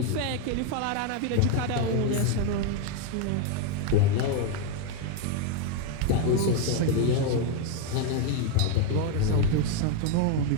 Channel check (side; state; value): both; different; correlation 0.01